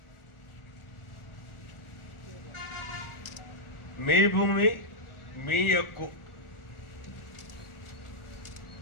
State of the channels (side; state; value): right; late; 1.4 ms